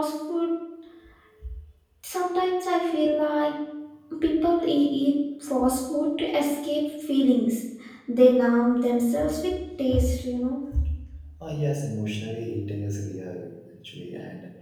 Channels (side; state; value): both; identical; correlation 1.00